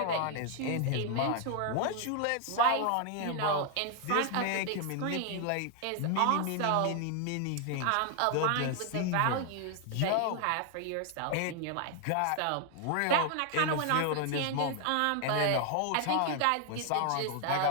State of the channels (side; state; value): both; different; correlation 0.00